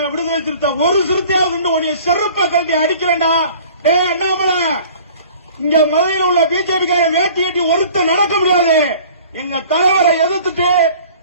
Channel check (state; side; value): inverted; both; correlation -0.47